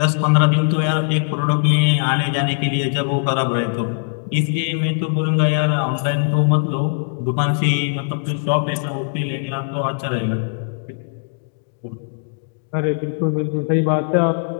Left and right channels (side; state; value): right; silent; digital silence